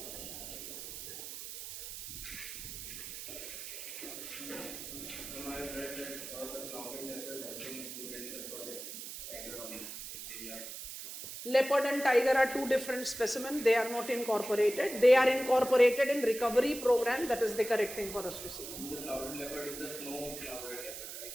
Leopard and tiger are 2 different specimens. They are not incorporated. They are incorporated in recovery program. That is the correct thing for us to see. The clouded leopard is the snow clouded leopard, right?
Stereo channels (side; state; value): right; noise; hiss, 9 dB below the sound